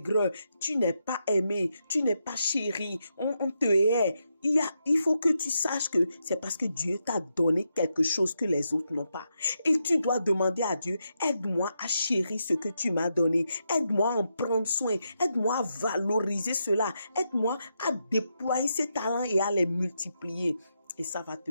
Tu n'es pas aimé. Tu n'es pas chéri. On te hait. il faut que tu saches que c'est parce que Dieu t'a donné quelque chose que les autres n'ont pas. Et tu dois demander à Dieu, aide-moi à chérir ce que tu m'as donné. Aide-moi à en prendre soin. Aide-moi à valoriser cela. Aide-moi à déployer ces talents et à les multiplier. Et ça va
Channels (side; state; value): both; inverted; correlation -0.83